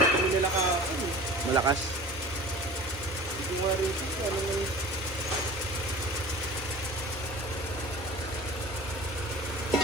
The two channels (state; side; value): normal; both; correlation 0.40